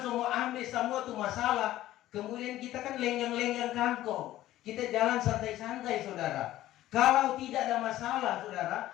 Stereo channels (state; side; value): quieter; right; 14.6 dB